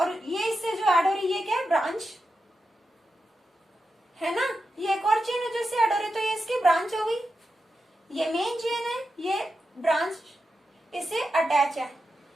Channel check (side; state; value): both; normal; correlation 0.89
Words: ये इससे जो ऐड हो रही है ये क्या है? ब्रांच है ना. ये एक और चेन है जो इससे ऐड हो रही है, तो ये इसकी ब्रांच हो गई. ये मेन चेन है, ये ब्रांच इससे अटैच है.